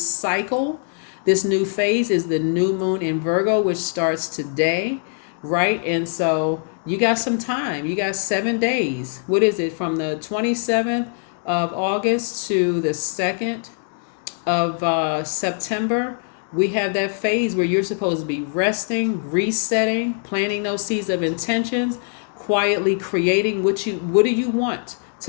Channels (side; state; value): right; silent; 59 dB below the other